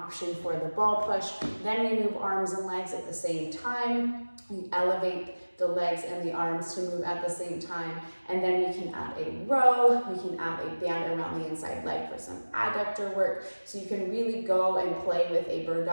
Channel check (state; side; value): inverted; both; correlation -1.00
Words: for the ball push. Then we move arms and legs at the same time. We elevate the legs and the arms to move at the same time. And then we can add a row, we can add a band around the inside leg for some adductor work. So you can really go and play with a bird